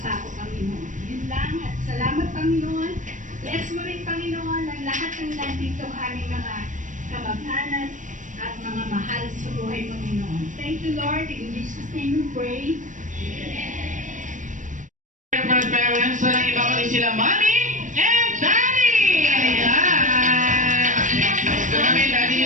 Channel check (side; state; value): left; late; 0.37 ms